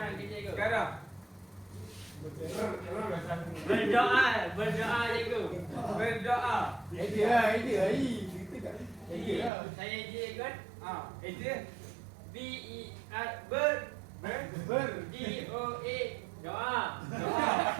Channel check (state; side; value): drops out; left; at 9.5 s